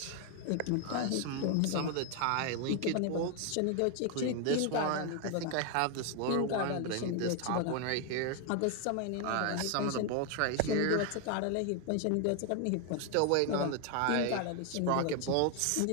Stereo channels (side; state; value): both; different; correlation 0.01